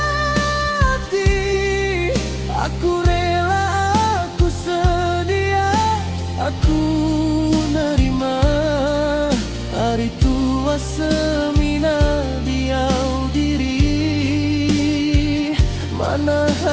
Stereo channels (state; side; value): identical; both; correlation 1.00